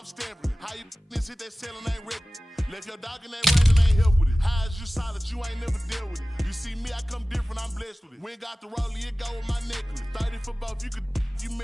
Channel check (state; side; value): normal; both; correlation 0.97